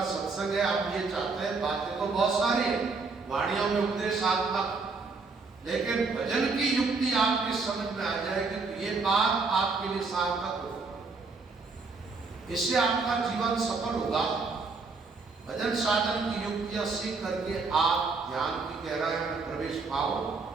सत्संग है। आप ये चाहते हैं, बातें तो बहुत सारी है, वाणियों में उपदेशात्मक, लेकिन भजन की युक्ति आपकी समझ में आ जाएगी तो ये बात आपके लिए सार्थक होगी। इससे आपका जीवन सफल होगा। भजन साधन की युक्तियां सीख करके आप ध्यान की गहराई में प्रवेश पाओ,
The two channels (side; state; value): left; quieter; 4.3 dB